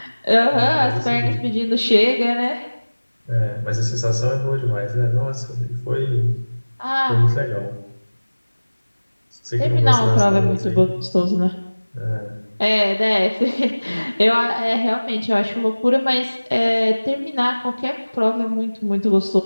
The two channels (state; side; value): inverted; both; correlation -1.00